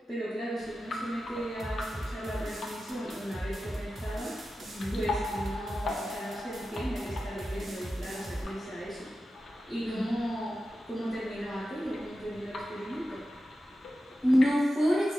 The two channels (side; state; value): both; normal; correlation 0.92